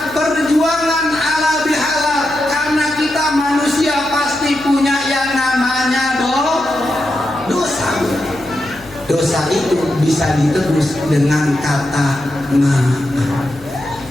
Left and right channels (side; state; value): left; noise; hum, 23 dB below the sound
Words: perjuangan ala bihalal. Karena kita manusia pasti punya yang namanya dosa. Dosa itu bisa ditebus dengan kata maaf.